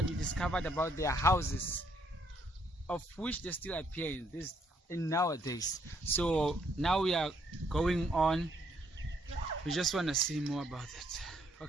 we discovered about their houses, of which they still appear in nowadays. So now we are going on. We just want to see more about it.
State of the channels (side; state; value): both; normal; correlation 0.70